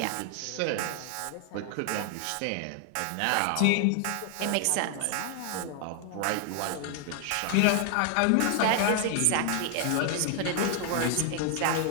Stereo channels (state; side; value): different; both; correlation 0.00